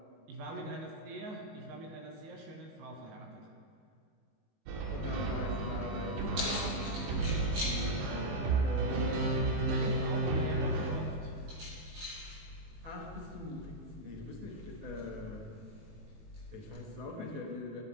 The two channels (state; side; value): late; left; 19 ms